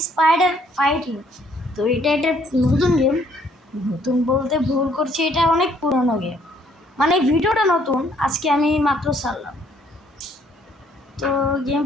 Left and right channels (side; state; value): both; normal; correlation 0.65